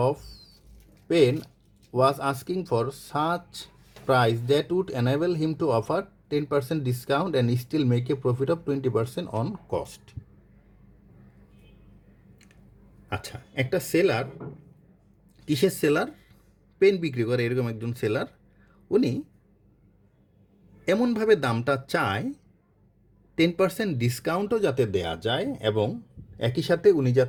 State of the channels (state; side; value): identical; both; correlation 1.00